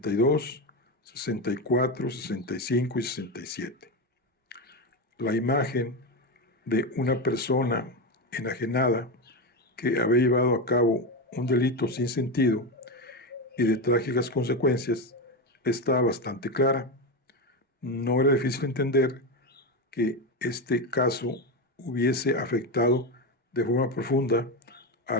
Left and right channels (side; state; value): both; normal; correlation 0.15